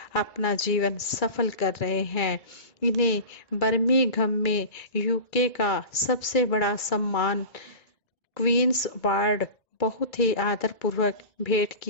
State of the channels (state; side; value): late; right; 2.3 ms